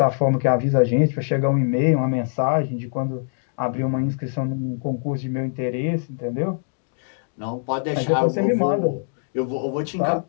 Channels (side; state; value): right; silent; digital silence